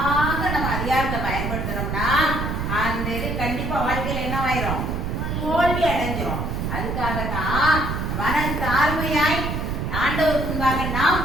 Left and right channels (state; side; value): noise; right; rumble, 2 dB below the sound